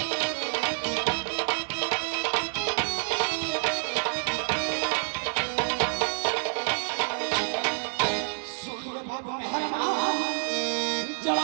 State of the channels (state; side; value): silent; left; 59 dB below the other